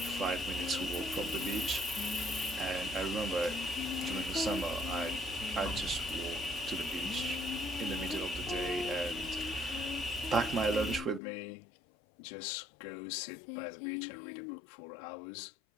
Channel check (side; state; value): right; drops out; at 11.2 s